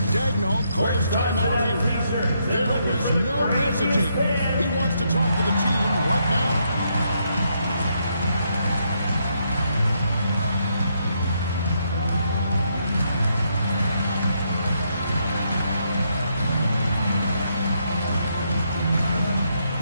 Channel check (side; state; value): both; inverted; correlation -0.77